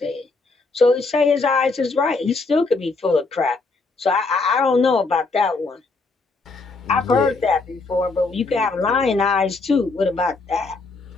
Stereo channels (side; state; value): right; quieter; 3.8 dB